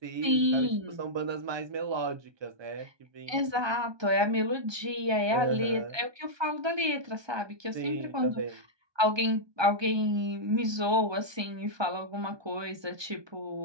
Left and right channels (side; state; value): left; late; 1.2 ms